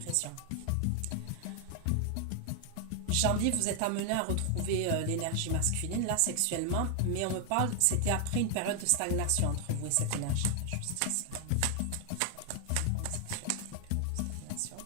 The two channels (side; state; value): both; different; correlation 0.00